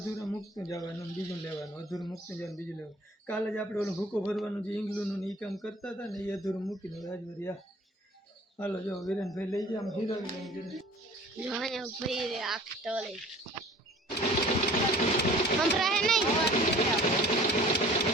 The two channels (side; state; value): both; normal; correlation 0.48